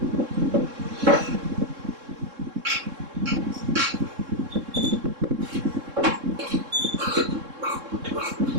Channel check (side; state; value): left; late; 3.7 ms